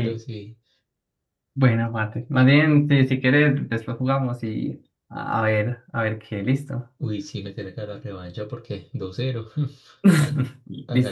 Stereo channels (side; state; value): both; identical; correlation 1.00